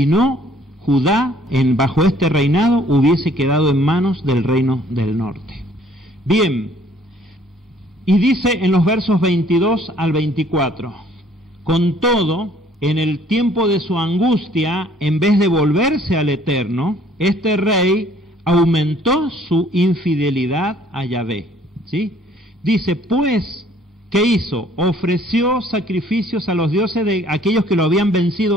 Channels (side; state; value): both; normal; correlation 0.59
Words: no, Judá, bajo este reinado, hubiese quedado en manos del reino del norte. Bien, y dice en los versos 22 al 24, con todo, en el tiempo de su angustia, en vez de volverse al Eterno, este rey aumentó su infidelidad a Yahvé, ¿sí? Dice, pues, ¿qué hizo? Ofreció sacrificios a los dioses de aquellos que lo habían